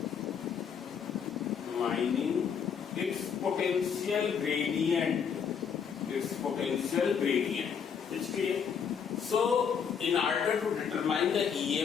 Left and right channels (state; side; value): quieter; right; 7.0 dB